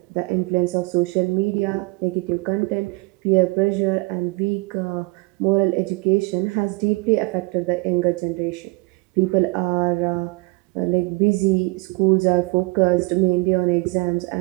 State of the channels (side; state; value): left; quieter; 26.4 dB